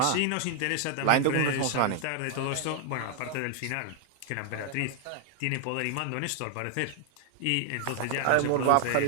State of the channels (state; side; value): different; both; correlation 0.00